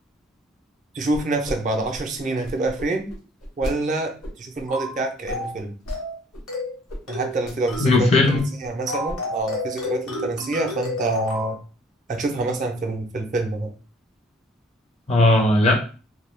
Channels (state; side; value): normal; both; correlation 0.56